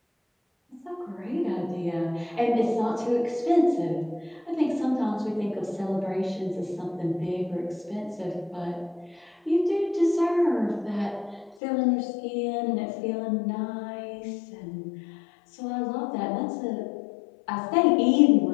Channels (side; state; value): right; drops out; at 11.6 s